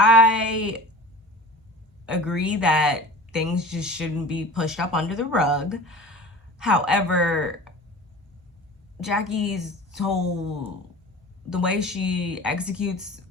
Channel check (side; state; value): both; normal; correlation 0.38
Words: agree that things just shouldn't be pushed up under the rug. However, Jackie's the way she executes